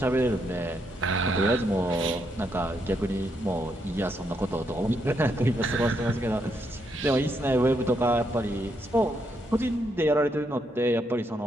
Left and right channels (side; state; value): both; normal; correlation 0.78